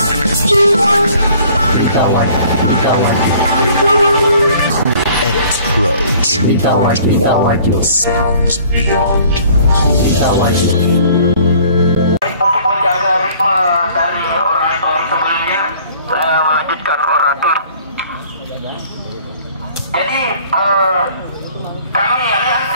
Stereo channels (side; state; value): both; inverted; correlation -0.54